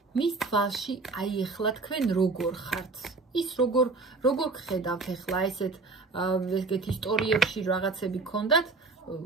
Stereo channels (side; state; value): left; quieter; 3.8 dB